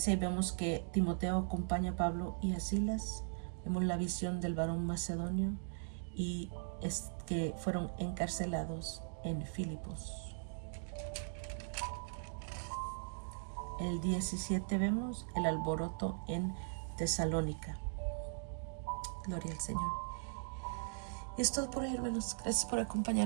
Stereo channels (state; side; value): silent; left; digital silence